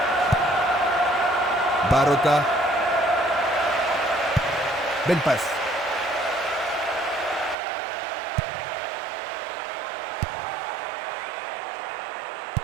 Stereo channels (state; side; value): drops out; left; at 7.6 s